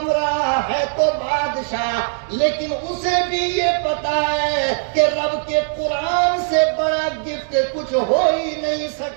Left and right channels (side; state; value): left; silent; digital silence